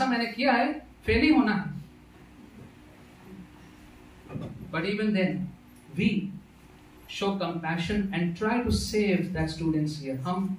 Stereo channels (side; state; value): both; identical; correlation 1.00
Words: मैंने किया है, फेल ही होना है. But even then, we show compassion and try to save that student's year. हम